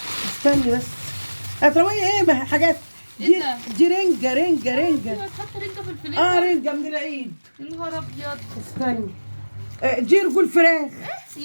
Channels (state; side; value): inverted; both; correlation -1.00